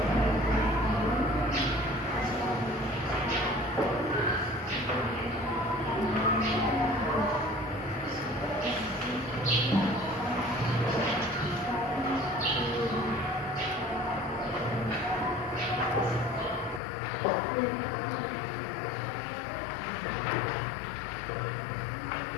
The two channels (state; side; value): drops out; right; at 16.8 s